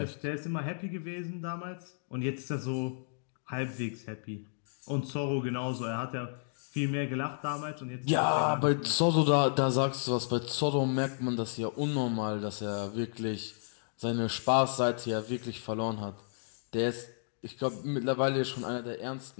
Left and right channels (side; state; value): right; silent; digital silence